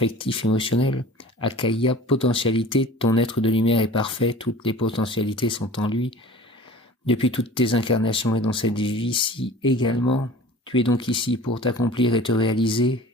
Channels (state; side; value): normal; both; correlation 0.42